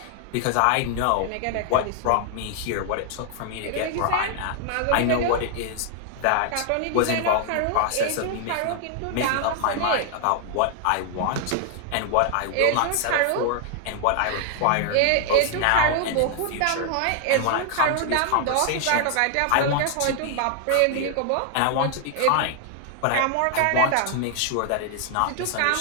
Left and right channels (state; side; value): different; both; correlation 0.00